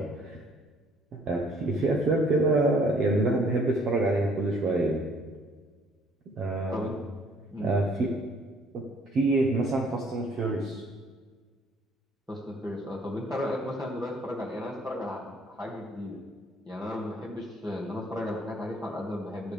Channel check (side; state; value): both; normal; correlation 0.60